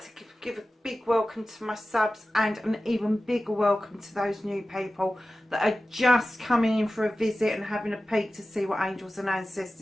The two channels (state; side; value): normal; both; correlation 0.95